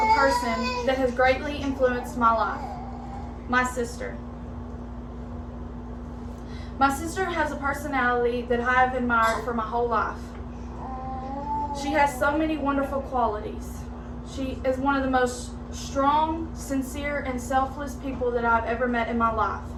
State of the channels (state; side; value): identical; both; correlation 1.00